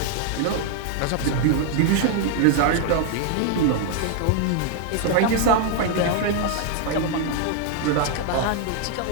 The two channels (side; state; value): both; different; correlation 0.00